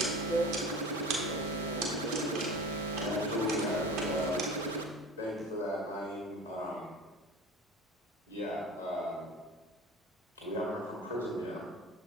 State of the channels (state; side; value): normal; both; correlation 0.36